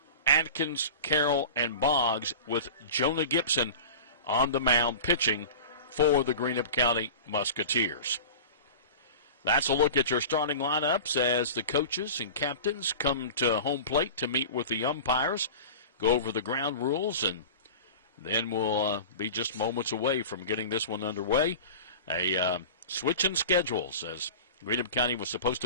Atkins, Carroll, and Boggs, with Jonah Gibson on the mound pitching for the Greenup County Musketeers. That's a look at your starting lineups as the coaches and captains come to home plate to meet with the umpires, go over the ground rules, and then we'll be just moments away from getting this one underway. A switch in schedules, as Greenup County was supposed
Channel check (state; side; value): inverted; both; correlation -0.34